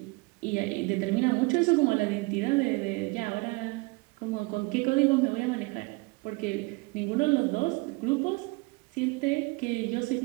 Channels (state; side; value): quieter; left; 26.3 dB